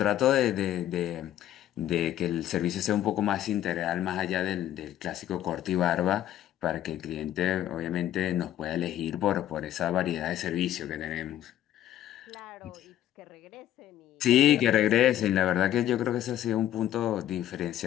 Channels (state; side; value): quieter; right; 12.2 dB